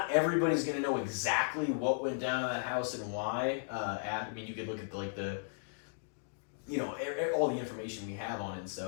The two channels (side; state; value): right; silent; digital silence